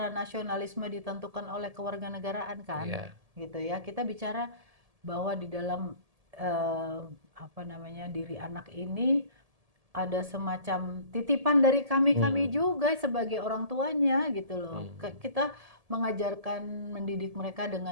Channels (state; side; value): late; left; 1.7 ms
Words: nasionalisme ditentukan oleh kewarganegaraan kan, Iya. gitu ya. Kita bicara bahwa di dalam eh, apa namanya diri anak ini ada semacam titipan dari kami-kami Hmm. juga sebagai orang tuanya gitu loh. Hmm. Kita mengajarkan, mendidik mereka dengan